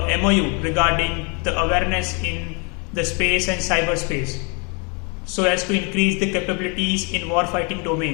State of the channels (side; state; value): right; quieter; 33.9 dB